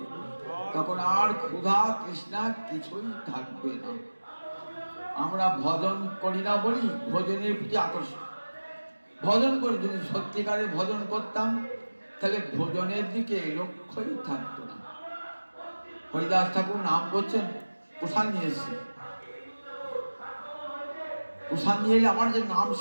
তখন আর ক্ষুধা তৃষ্ণা কিছুই থাকবে না। আমরা ভজন করি না বলি ভোজনের প্রতি আকর্ষণ। ভজন করে যদি সত্যিকারে ভজন করতাম, তাহলে ভোজনের দিকে লক্ষ্যই থাকতো না। হরিদাস ঠাকুর নাম করছেন, প্রসাদ নিয়ে এসছে, প্রসাদ নিয়ে এলে আমার যে নাম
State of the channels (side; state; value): both; inverted; correlation -1.00